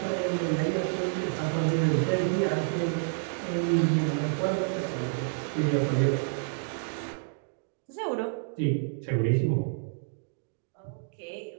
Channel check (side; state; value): left; silent; digital silence